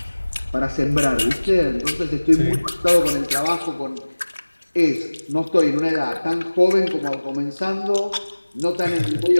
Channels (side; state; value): both; inverted; correlation -1.00